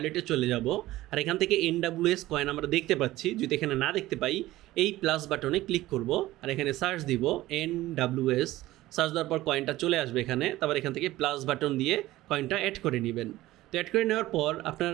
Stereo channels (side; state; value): left; quieter; 16.7 dB